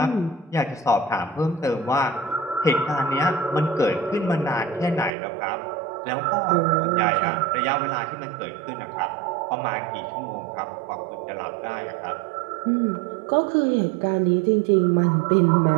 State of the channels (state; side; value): drops out; left; at 5.1 s